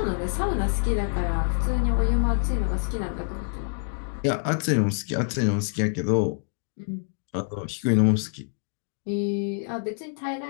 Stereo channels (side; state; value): right; silent; 60 dB below the other